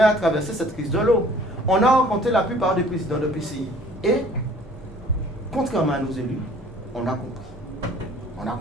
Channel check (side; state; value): both; normal; correlation 0.53